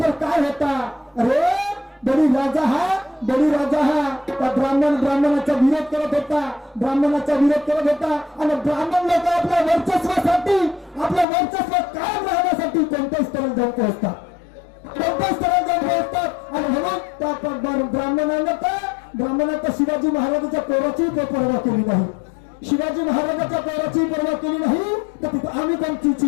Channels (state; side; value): drops out; right; at 11.2 s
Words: काय होता? अरे बडी राजा हा त्या ब्राह्मणाचा विरोध करत होता, ब्राह्मणाचा विरोध करत होता. आणि ब्राह्मण लोक आपल्या वर्चस्वासाठी, आपलं वर्चस्व कायम राहण्यासाठी कोणत्याही स्तरात जाऊन पोहोचतात, कोणत्याही स्तरात जाऊन पोहोचतात. आणि म्हणून त्या ब्राह्मणाचा शिवाजी महाराजांच्या पोराचीही पर्वा केली नाही, शिवाजी महाराजांच्या पोराचीही पर्वा केली नाही. तर तिथे आम्ही कोणती